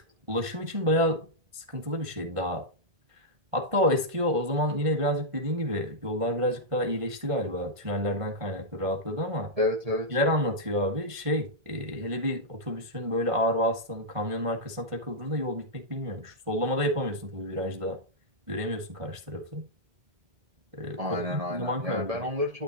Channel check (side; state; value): left; late; 1.5 ms